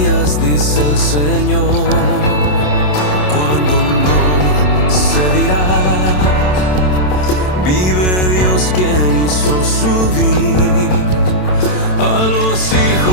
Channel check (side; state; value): right; late; 27 ms